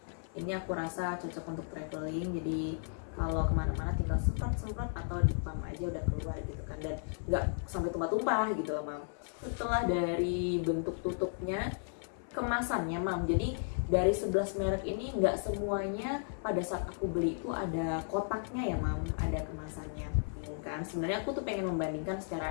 Ini aku rasa cocok untuk traveling. Jadi kalau kemana-mana tinggal semprot-semprot atau di pump aja udah keluar gitu kan, dan nggak sampai tumpah-tumpah gitu loh Mam. Setelah dari bentuk tutupnya, kemasannya Mam, jadi dari 11 merek ini nggak semuanya pada saat aku beli itu ada kotaknya ya Mam, ada kemasannya. membandingkan. Sebenarnya aku tuh pengen membandingkan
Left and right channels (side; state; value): right; silent; 55 dB below the other